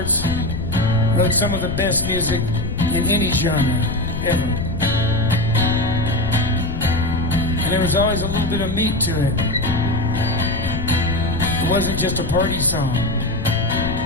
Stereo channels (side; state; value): left; noise; rumble, 5 dB below the sound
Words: wrote some of the best music in any genre ever. And there was always a little bit of meat to it. It wasn't just a party song.